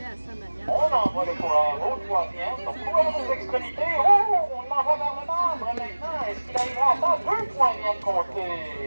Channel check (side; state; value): both; inverted; correlation -1.00